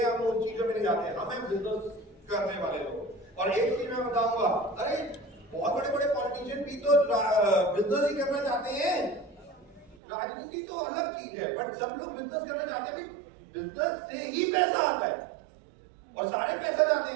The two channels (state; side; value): drops out; left; at 10.0 s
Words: हम उन चीजों में नहीं जाते हैं, हमें बिजनेस करने वाले लोग। और एक चीज मैं बताऊंगा, अरे बहुत बड़े बड़े पॉलिटिशियन भी तो बिजनेस ही करना चाहते हैं। राजनीति तो अलग चीज है, बट सब लोग बिजनेस करना चाहते हैं। बिजनेस से ही पैसा आता है और सारे पैसा जाते